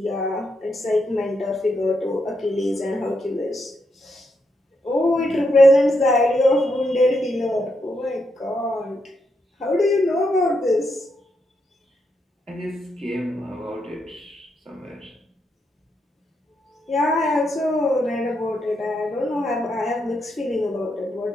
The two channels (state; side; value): normal; both; correlation 0.81